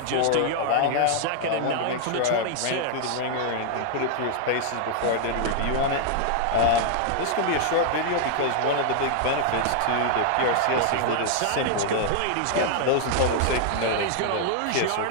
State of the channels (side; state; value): both; different; correlation 0.00